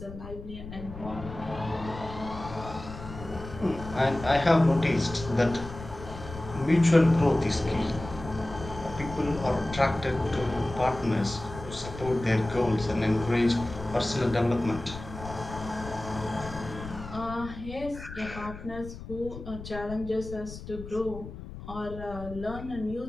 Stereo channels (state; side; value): noise; left; rumble, 12 dB below the sound